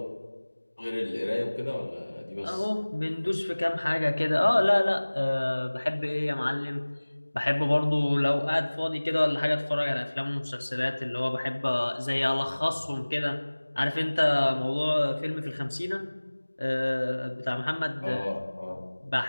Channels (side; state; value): both; inverted; correlation -1.00